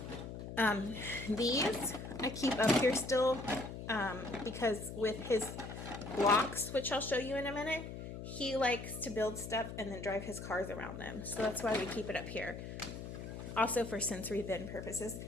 These I keep up here still because with his blocks, which I'll show you in a minute, he likes to build stuff and then drive his cars around them. So that's why we keep it up here. Also for sensory bin purposes.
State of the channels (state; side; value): noise; left; hum, 9 dB below the sound